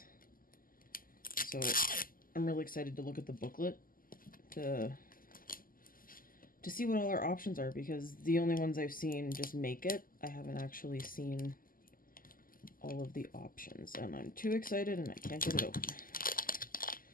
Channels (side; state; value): right; late; 0.41 ms